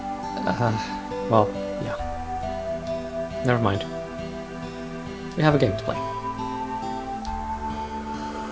Well, yeah. Never mind. We have a game to play.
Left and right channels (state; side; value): identical; both; correlation 1.00